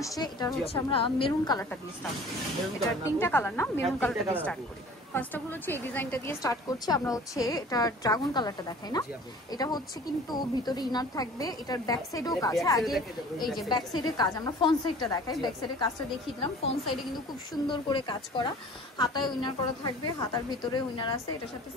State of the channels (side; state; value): both; normal; correlation 0.46